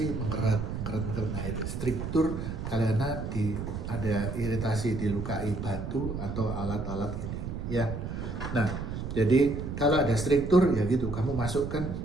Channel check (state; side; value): noise; right; rumble, 5 dB below the sound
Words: mengkeret. Nah itu struktur karena ada iritasi, dilukai batu atau alat-alat ini ya. Nah jadi kalau ada struktur ya gitu, kamu masukkan